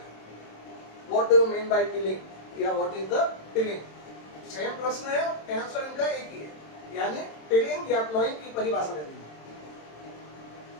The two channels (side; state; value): right; late; 27 ms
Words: What do you mean by tilling या what is the tilling, same प्रश्न है, आंसर इनका एक ही है, यानी टिलिंग या प्लोइंग की परिभाषा दे दी।